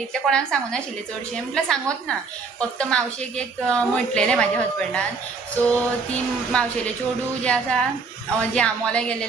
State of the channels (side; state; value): left; quieter; 4.7 dB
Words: कोणाक सांगूं नाशिल्लें चडशें म्हटल्यार सांगोत ना फक्त मावशेक एक म्हटलेलें म्हाज्या हजबंडान सो ती मावशेलें चेडूं जें आसा जें आमोल्या गेलें